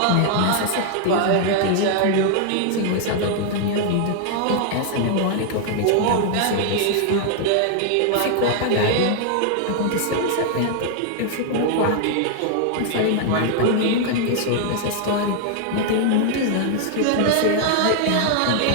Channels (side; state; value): both; different; correlation 0.00